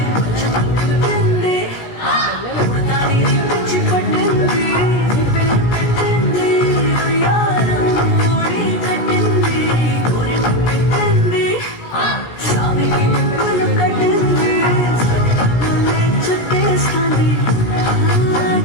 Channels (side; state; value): right; late; 17 ms